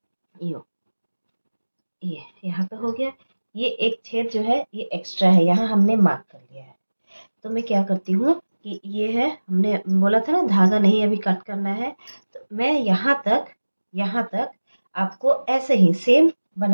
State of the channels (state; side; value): inverted; both; correlation -1.00